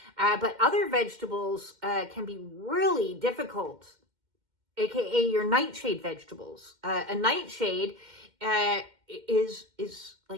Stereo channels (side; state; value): left; late; 2.1 ms